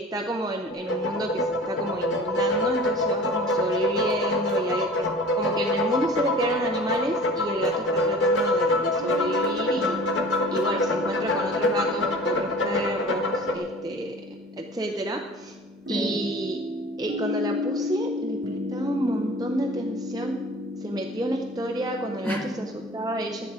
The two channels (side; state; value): both; normal; correlation 0.43